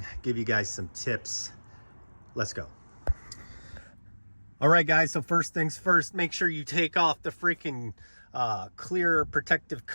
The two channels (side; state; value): both; inverted; correlation -1.00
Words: give you guys some tips. Let's go. All right, guys, so first things first, make sure you take off the freaking clear protective